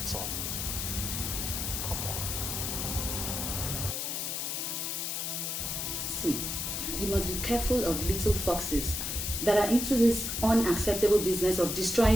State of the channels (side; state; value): left; noise; hiss, 2 dB below the sound